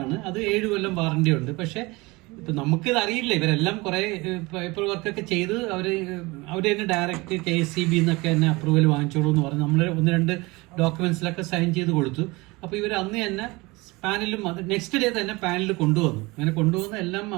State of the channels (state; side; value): quieter; left; 23.5 dB